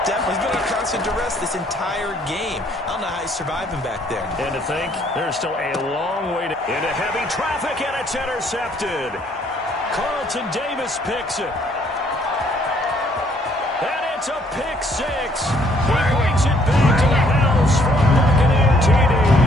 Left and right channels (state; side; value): normal; both; correlation 0.65